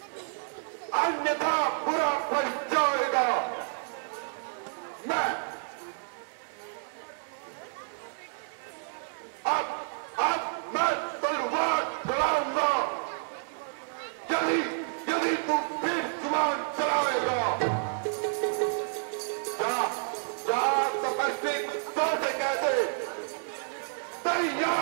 अन्यथा बुरा फल जाएगा। मैं अब मैं तलवार चलाऊंगा यदि तू फिर जुबान चलाएगा। तपस्वी तो से कहते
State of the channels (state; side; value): silent; left; digital silence